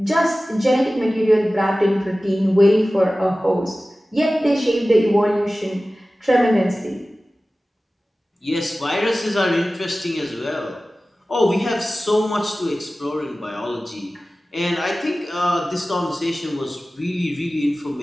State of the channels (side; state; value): both; normal; correlation 0.96